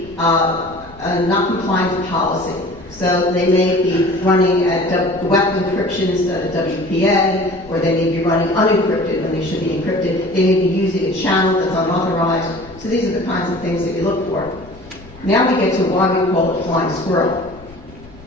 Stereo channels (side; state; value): left; noise; rumble, 22 dB below the sound